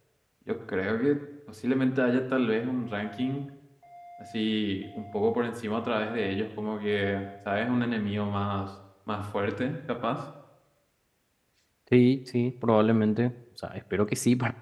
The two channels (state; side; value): identical; both; correlation 1.00